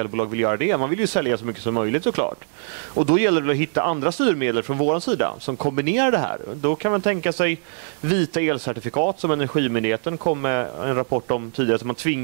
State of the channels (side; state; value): left; silent; digital silence